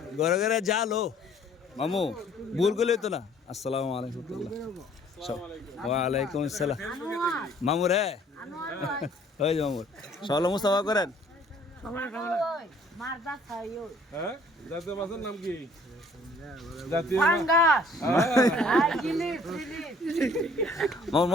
ঘরে ঘরে জালো মামু ভুল করলে তো না আসসালামু আলাইকুম ওয়ালাইকুম আসসালাম মামু রে ওই যে মামুর সকালে মুস্তাফা করেন মারদা খাইও হ্যাঁ জাতীয় মাছের নাম কি জাতীয় পাঙ্গাস আই গিলি মামুর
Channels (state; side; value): normal; both; correlation 0.57